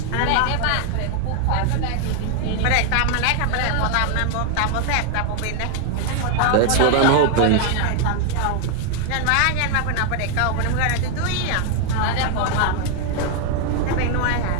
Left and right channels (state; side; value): different; both; correlation 0.00